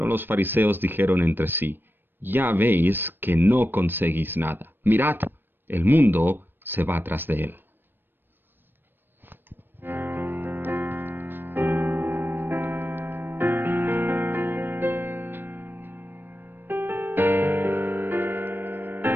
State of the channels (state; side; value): late; left; 0.096 ms